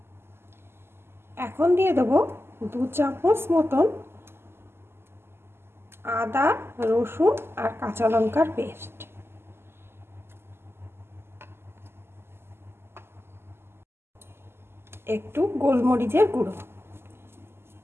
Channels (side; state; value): left; late; 0.12 ms